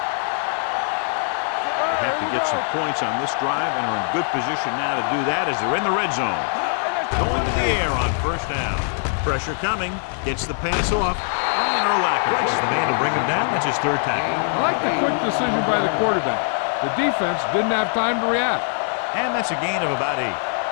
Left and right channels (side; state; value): right; silent; 64 dB below the other